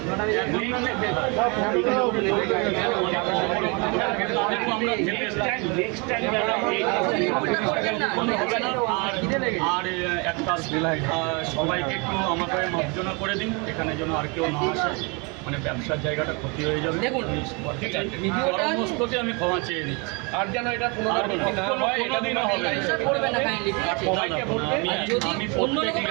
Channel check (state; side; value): quieter; left; 31.2 dB